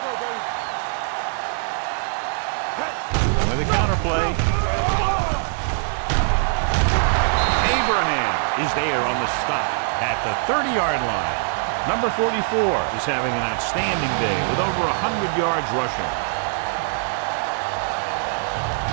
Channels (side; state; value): left; silent; digital silence